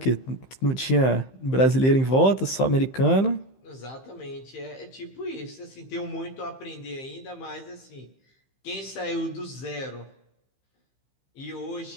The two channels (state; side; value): late; right; 15 ms